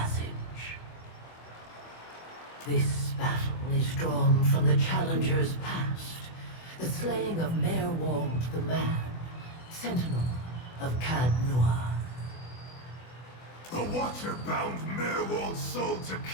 This battle is drawn from the challenger's past, the slaying of Merwald the Mad, sentinel of Cadnua. The Watcher bound Merwald's soul to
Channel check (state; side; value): late; right; 24 ms